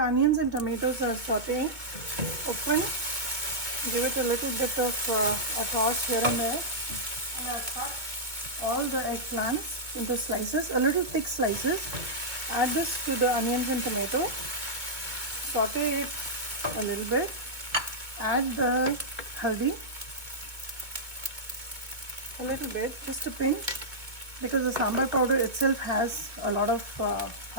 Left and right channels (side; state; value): left; late; 2.0 ms